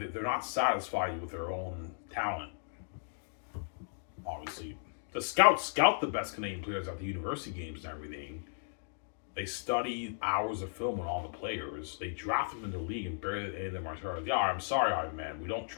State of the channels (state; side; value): silent; right; digital silence